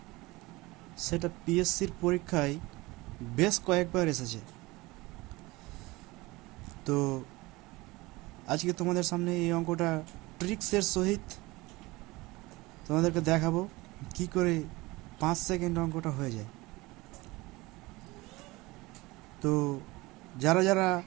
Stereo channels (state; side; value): quieter; left; 21.6 dB